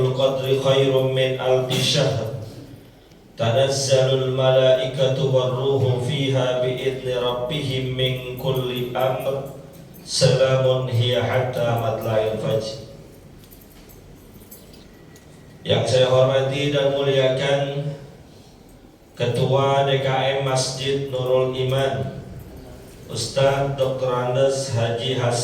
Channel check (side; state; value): both; identical; correlation 1.00